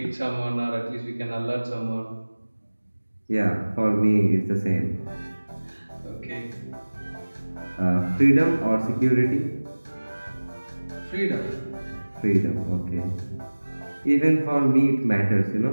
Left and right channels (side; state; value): both; inverted; correlation -1.00